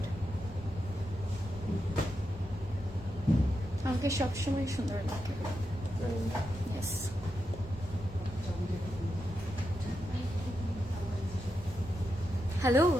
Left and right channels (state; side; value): normal; both; correlation 0.86